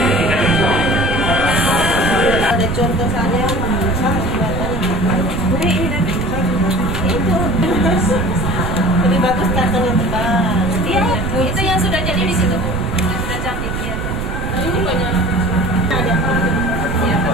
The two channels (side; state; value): right; noise; rumble, 4 dB below the sound